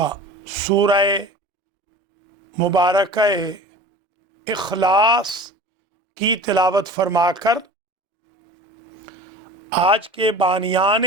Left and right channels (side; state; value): both; normal; correlation 0.38